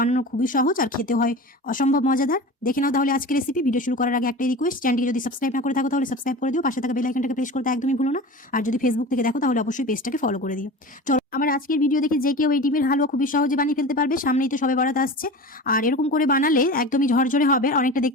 খুবই সহজ আর খেতে হয় অসম্ভব মজাদার। দেখে নাও তাহলে আজকের রেসিপি। ভিডিও শুরু করার আগে একটাই রিকোয়েস্ট, চ্যানেলটিকে যদি সাবস্ক্রাইব না করে থাকো তাহলে সাবস্ক্রাইব করে দিও, পাশে থাকা বেল আইকনটাকে প্রেস করতে একদমই ভুলো না। আর যদি ফেসবুক থেকে দেখো তাহলে অবশ্যই পেজটাকে ফলো করে দিও। চলো, আমার আজকের ভিডিও দেখে যে কেউ এই ডিমের হালুয়া খুবই সহজে বানিয়ে ফেলতে পারবে। সামনেই তো সবে বরাত আসছে, আর এরকম করে বানালে একদমই ঝরঝরে হবে, অনেকটা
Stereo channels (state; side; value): normal; both; correlation 0.33